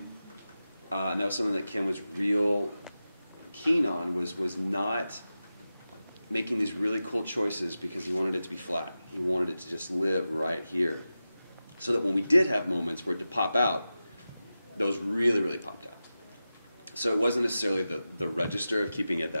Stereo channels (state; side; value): inverted; both; correlation -0.93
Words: And that was something that Kim was real keen on, was not making these really cool choices because he wanted it to be flat. He wanted it to just live right here. So that when we did have moments for it to pop out, those really, really popped out. So it wasn't necessarily the register of keeping it